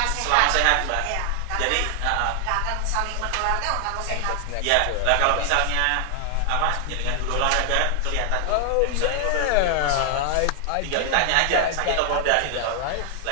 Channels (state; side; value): different; both; correlation 0.00